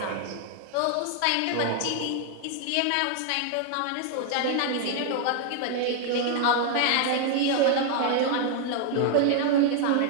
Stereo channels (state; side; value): different; both; correlation 0.00